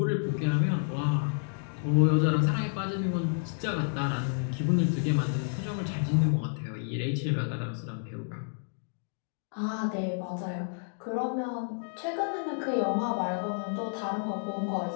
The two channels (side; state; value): right; silent; digital silence